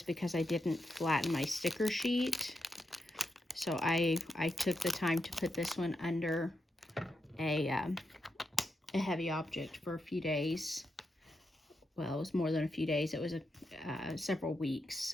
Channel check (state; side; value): normal; both; correlation 0.85